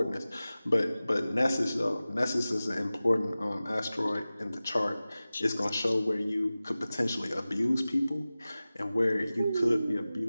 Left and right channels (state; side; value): inverted; both; correlation -0.97